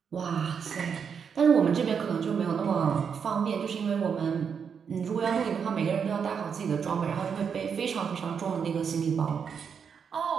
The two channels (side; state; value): left; quieter; 6.8 dB